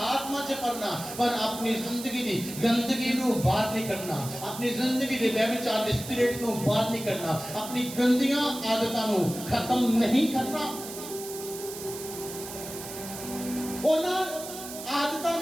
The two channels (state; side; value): noise; right; hiss, 11 dB below the sound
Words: आत्मा से पढ़ना पर अपनी जिंदगी दी गंदगी नु बाहर नहीं करना अपनी जिंदगी दे व्यभिचार दे स्पिरिट नु बाहर नहीं करना अपनी गंदियां आदतां नु खत्म नहीं करना ओना आदतां